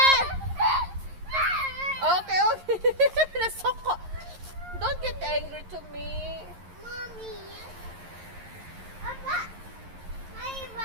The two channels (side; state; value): left; late; 11 ms